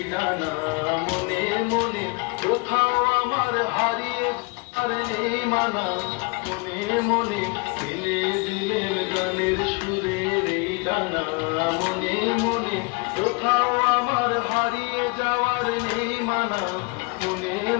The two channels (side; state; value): right; quieter; 29.0 dB